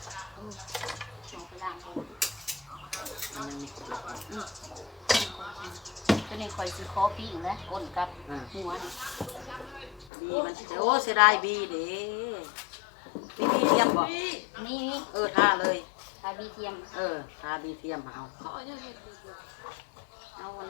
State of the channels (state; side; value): drops out; right; at 10.1 s